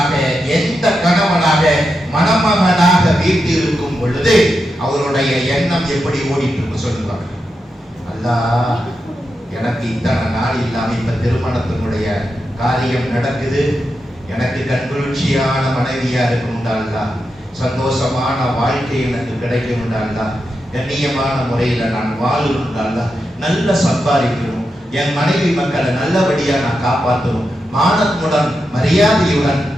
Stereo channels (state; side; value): normal; both; correlation 0.87